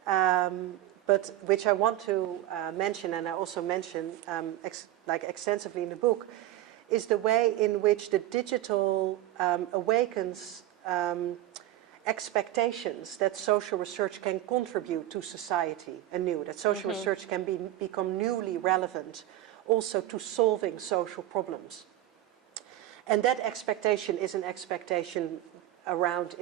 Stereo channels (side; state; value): left; quieter; 14.2 dB